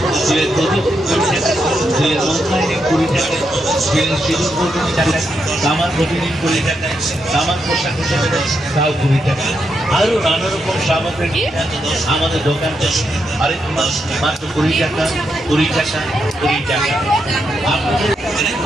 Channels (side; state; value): both; normal; correlation 0.82